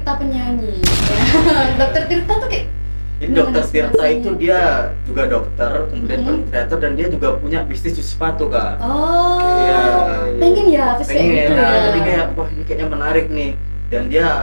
penyanyi. Dokter Tirta tuh kayak Jadi gimana Dokter Tirta inspirasinya? itu dia juga dokter, kemudian konten kreator dan dia juga punya bisnis cuci sepatu kak. Oh, Iya. pengen ya, habis kayak Pengen, gitu nah, ya. jadi kayak wah ini kayaknya menarik nih. Dan dia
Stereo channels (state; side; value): inverted; both; correlation -1.00